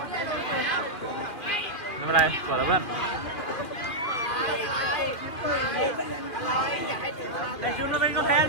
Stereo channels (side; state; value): right; late; 2.4 ms